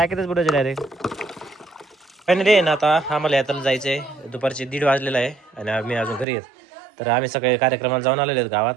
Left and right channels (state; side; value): drops out; left; at 6.2 s